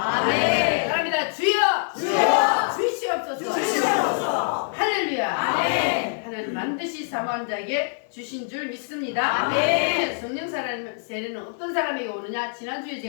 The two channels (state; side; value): silent; right; digital silence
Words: 바랍니다. 주여! 주시옵소서. 할렐루야. 하나님 반드시 사모한 자에게 주신 줄 믿습니다. 성령 세례는 어떤 사람에게 오느냐? 지난주에